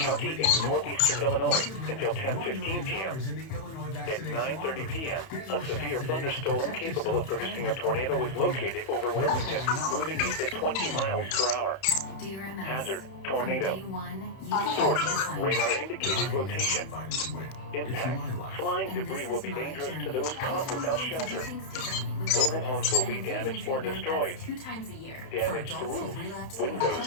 in northeastern Illinois until 10:15 p.m. At 9:30 p.m., a severe thunderstorm capable of producing a tornado was located over Wilmington, moving east at 20 miles per hour. Hazard, tornado. Source, radar indicated rotation. Impact, flying debris will be dangerous to those caught without shelter. Mobile homes will be damaged or destroyed. Damage to roofs, windows,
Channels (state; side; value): late; right; 31 ms